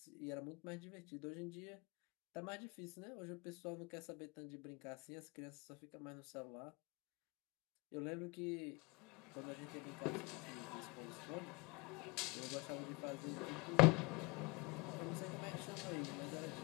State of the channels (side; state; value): right; quieter; 26.9 dB